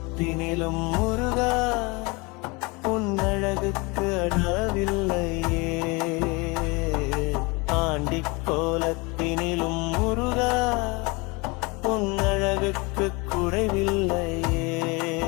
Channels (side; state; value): right; quieter; 27.0 dB